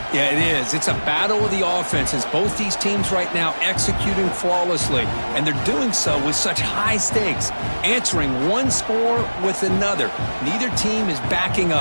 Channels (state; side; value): inverted; both; correlation -1.00